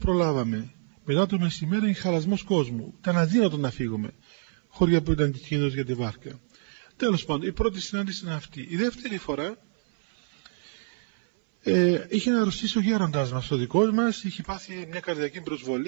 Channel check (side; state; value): left; silent; 57 dB below the other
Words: Μετά το μεσημέρι είναι χαλασμός κόσμου. Ήταν αδύνατο να φύγουμε. Χώρια που ήταν κίνδυνος για τη βάρκα. Τέλος πάντων, η πρώτη συνάντηση είναι αυτή. Η δεύτερη φορά είχε να αρρωστήσει ο γέροντας μας, ο δικός μας, είχε πάθει μια καρδιακή